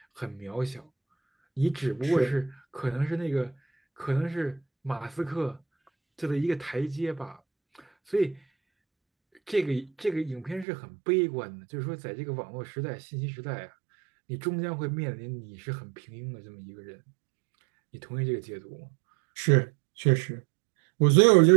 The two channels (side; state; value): left; drops out; at 10.7 s